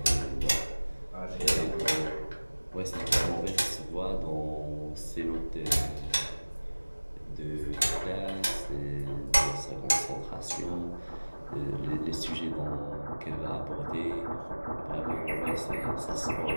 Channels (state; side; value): inverted; both; correlation -1.00